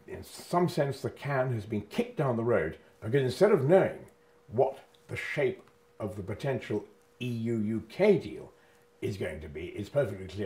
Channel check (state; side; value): identical; both; correlation 1.00